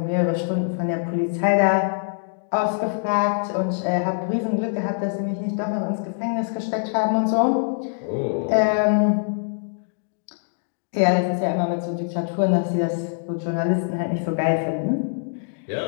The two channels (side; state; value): right; silent; digital silence